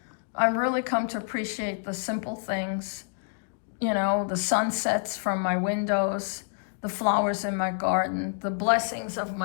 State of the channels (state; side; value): silent; right; digital silence